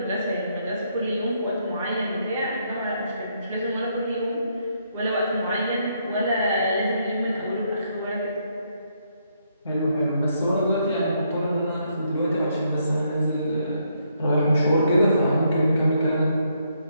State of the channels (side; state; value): both; inverted; correlation -0.74